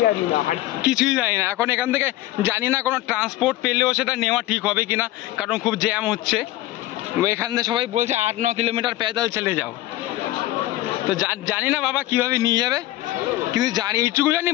কিছুই জানি না। এখন এখান থেকে জানি না কোনো ট্রান্সপোর্ট পেলেও সেটা নেওয়া ঠিক হবে কিনা, কারণ খুব জ্যাম হচ্ছে। এখান থেকে সবাই বলছে 8-9 কিলোমিটার প্যাদল চলে যাও। তো জানি না বাবা কিভাবে নিয়ে যাবে, কিন্তু জানি এইটুকু জানি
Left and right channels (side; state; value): right; quieter; 16.2 dB